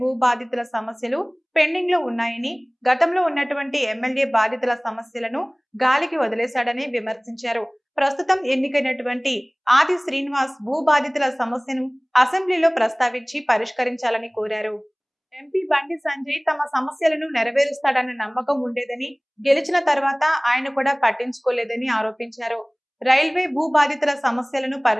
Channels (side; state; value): both; identical; correlation 1.00